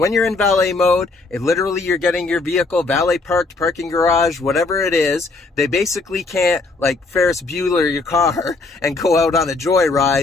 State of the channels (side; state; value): right; quieter; 3.6 dB